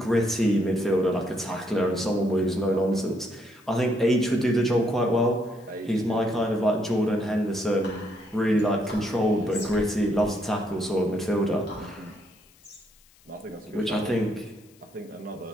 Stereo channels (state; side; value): noise; left; hiss, 29 dB below the sound